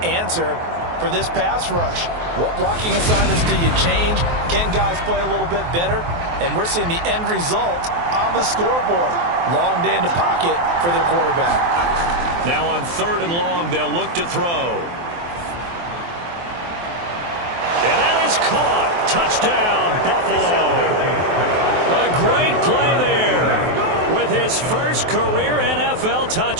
answer for this pass rush? What blocking assignments do you change? Can guys play a little bit better? And we're seeing the end result on the scoreboard. Long day in the pocket for their quarterback. Now on 3rd and long, they'll look to throw. And that is caught. Touchdown, Buffalo. A great play there with his first career NFL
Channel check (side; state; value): left; late; 23 ms